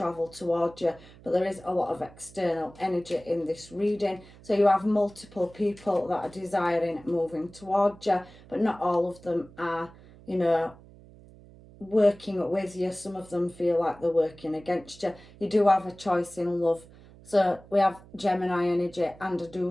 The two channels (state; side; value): noise; right; hum, 22 dB below the sound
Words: towards you, but there is a lot of external energy in this reading. So you have multiple people that are desiring moving towards you, but not all of them are, you know, working with you. Some of them feel like they're working against you. You do have a choice in love. So we have Gemini energy, and I do